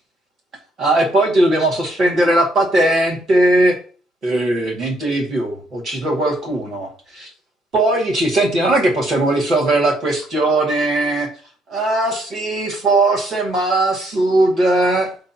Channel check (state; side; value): normal; both; correlation 0.71